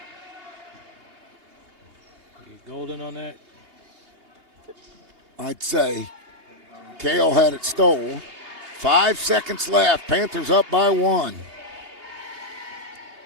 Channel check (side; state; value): left; late; 3.2 ms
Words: Golden on that. I'd say Kale had it stolen. 5 seconds left. Panthers up by 1.